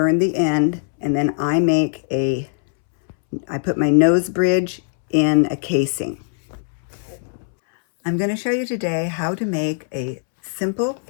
the end, and then I put my nose bridge in a casing. I'm going to show you today how to make a simple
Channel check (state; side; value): silent; right; 65 dB below the other